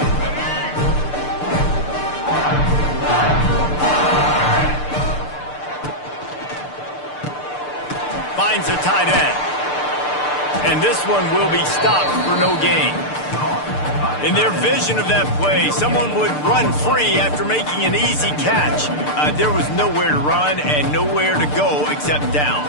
Finds a tight end. And this one will be stopped for no gain. In their vision of that play, someone would run free after making an easy catch. There was nowhere to run and nowhere to go except down.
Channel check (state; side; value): late; right; 6.7 ms